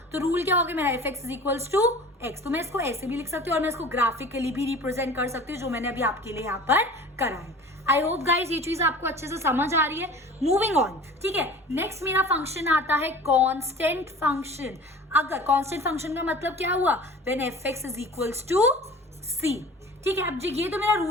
तो रूल क्या हो गया मेरा, F x is equals to X. तो मैं इसको ऐसे भी लिख सकती हूँ और मैं इसको ग्राफिकली भी रिप्रेजेंट कर सकती हूँ, जो मैंने अभी आपके लिए यहाँ पर करा है। आई होप गाइज ये चीज आपको अच्छे से समझ आ रही है। मूविंग ऑन, ठीक है। नेक्स्ट मेरा फंक्शन आता है कांस्टेंट फंक्शन। अगर कांस्टेंट फंक्शन का मतलब क्या हुआ, when f x is equals to c, ठीक है। अब जी ये तो मेरा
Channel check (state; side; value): normal; both; correlation 0.42